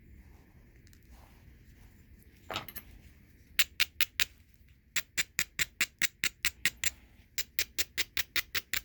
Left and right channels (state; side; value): identical; both; correlation 1.00